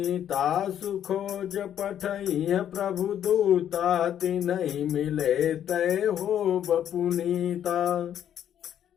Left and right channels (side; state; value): right; quieter; 10.1 dB